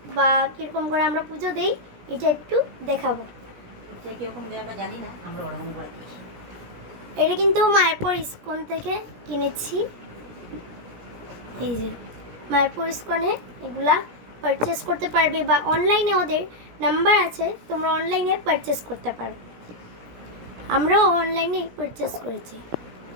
বা কীরকম করে আমরা পুজো দিই এটা একটু দেখাবো। এটা কিন্তু মায়াপুর ইস্কন থেকে কিনেছি। এই যে মায়াপুর ইস্কনে এগুলা পারচেস করতে পারবে, বা অনলাইনে ওদের নাম্বার আছে, তোমরা অনলাইনে পারচেস করতে পারো। আমরাও অনলাইনে পারচেস করেছি।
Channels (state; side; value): late; left; 17 ms